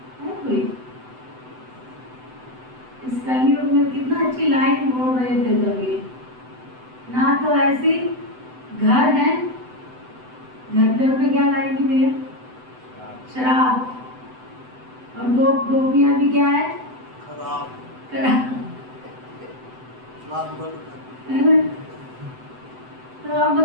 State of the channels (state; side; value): late; left; 7.9 ms